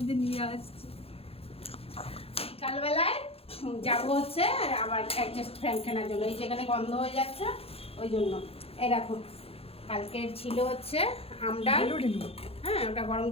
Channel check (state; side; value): late; right; 0.28 ms